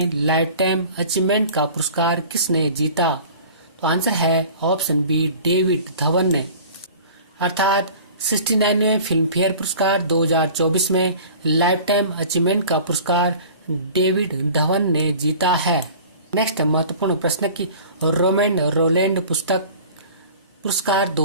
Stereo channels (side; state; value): both; inverted; correlation -0.44